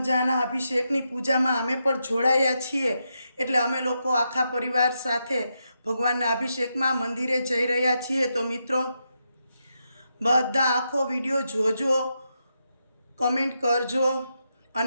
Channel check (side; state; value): both; inverted; correlation -0.84